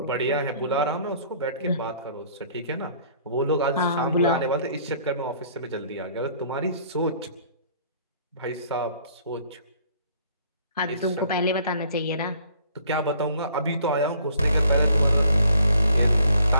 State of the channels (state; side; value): inverted; both; correlation -0.59